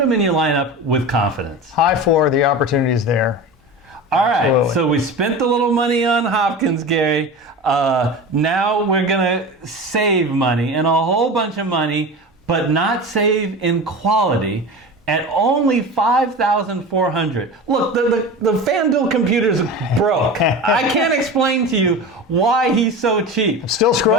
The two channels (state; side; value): normal; both; correlation 0.30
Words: him in your lineup with confidence. High floor, the opportunity is there. All right, Absolutely. So we spent a little money on Hopkins, Gary. Now we're going to save money, and a whole bunch of money, but not save in quality, at only $5,400. Look, the FanDuel computer's broke. I can't explain to you why he's so cheap. Still